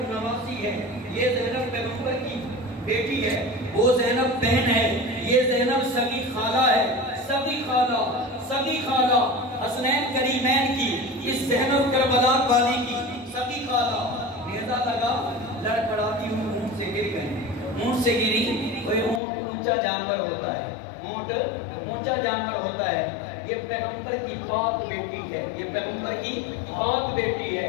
نواسی ہے، یہ زینب پیغمبر کی بیٹی ہے، وہ زینب بہن ہے، یہ زینب سگی خالہ ہے، سگی خالہ حسنین کریمین کی، اس زینب کربلا والی کی سگی خالہ، نیزہ لگا، لڑکڑاتی ہوں اونٹ سے گر گئے، اونٹ سے گری، کوئی اونٹ اونچا جانور ہوتا ہے، اونٹ اونچا جانور ہوتا ہے، یہ پیغمبر کی پاک بیٹی ہے، یہ پیغمبر کی پاک بیٹی ہے،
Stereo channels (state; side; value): drops out; right; at 19.2 s